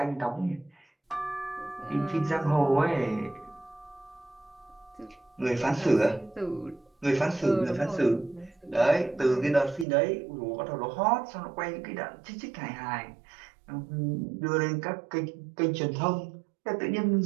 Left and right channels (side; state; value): left; drops out; at 9.9 s